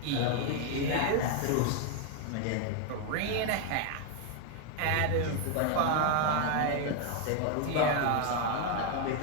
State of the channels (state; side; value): different; both; correlation 0.01